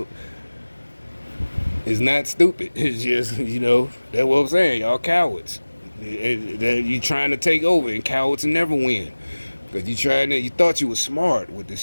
it's not stupid. It's just, you know, that's what I'm saying. Y'all cowards. You trying to take over, and cowards never win. Because you thought you was smart with the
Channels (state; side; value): inverted; both; correlation -1.00